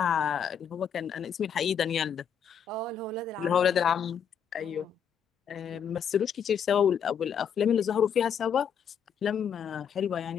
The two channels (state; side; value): quieter; right; 7.6 dB